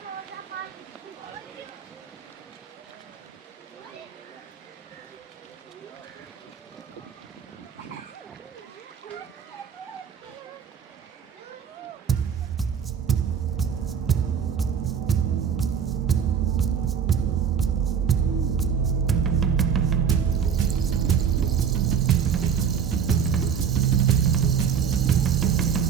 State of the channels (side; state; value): left; quieter; 7.3 dB